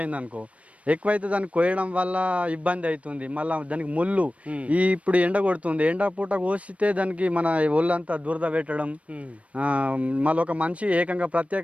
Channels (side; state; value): left; late; 0.064 ms